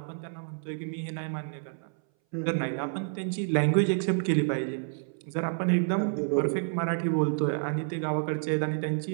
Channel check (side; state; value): left; silent; 59 dB below the other